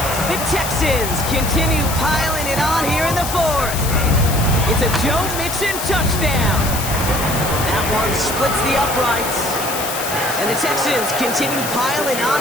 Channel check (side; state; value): left; noise; hiss, 6 dB below the sound